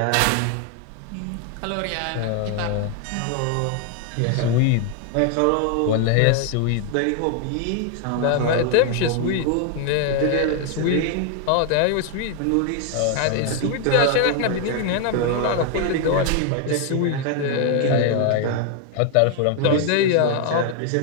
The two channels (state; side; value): different; both; correlation 0.00